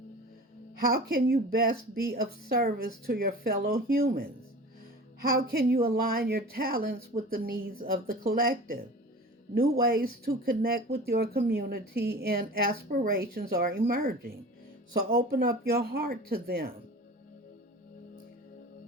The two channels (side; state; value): both; normal; correlation 0.38